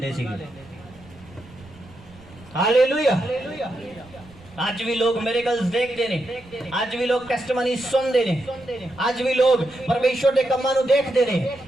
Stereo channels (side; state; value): right; noise; rumble, 23 dB below the sound